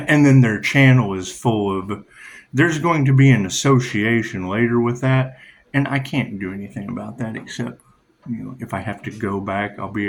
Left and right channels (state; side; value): identical; both; correlation 1.00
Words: then their channel is full of, there's going to be an association later with that, and I can't do anything about that except, if I have to go back,